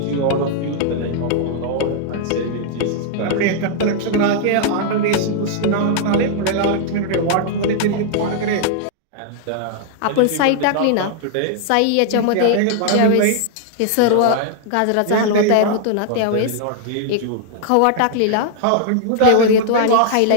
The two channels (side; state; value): both; different; correlation -0.01